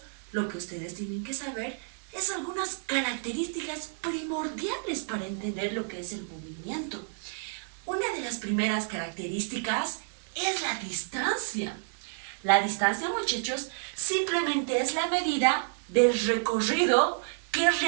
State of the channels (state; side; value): silent; left; digital silence